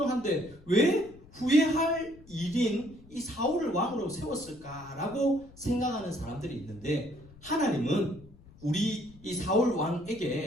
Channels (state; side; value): noise; left; rumble, 23 dB below the sound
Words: 왜 후회할 일인 이 사울을 왕으로 세웠을까라고 생각하는 사람들이 있는데, 하나님은 우리 이 사울